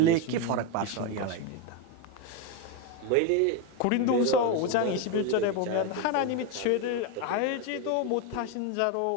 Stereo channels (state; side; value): different; both; correlation 0.02